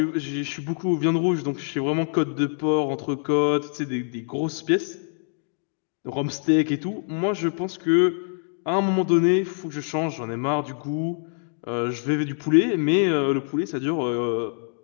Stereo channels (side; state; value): right; silent; 57 dB below the other